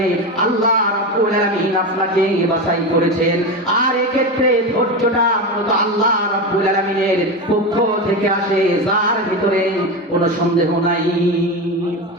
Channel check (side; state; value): both; normal; correlation 0.19